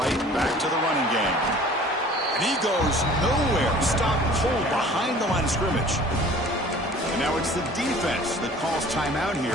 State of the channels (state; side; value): normal; both; correlation 0.48